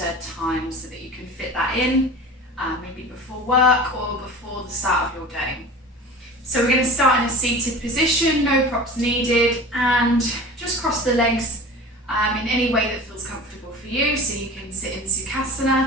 time so that you can fit that in, maybe before work or before the start of your day. So we're going to start in a seated position, no props needed, and just cross the legs in any way that feels comfortable for you. So you can sit in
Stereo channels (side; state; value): both; normal; correlation 0.36